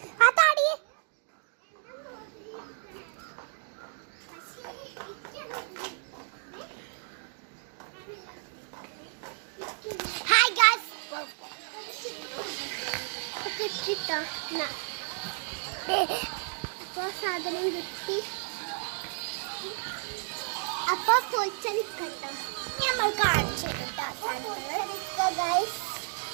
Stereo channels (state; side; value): silent; left; 57 dB below the other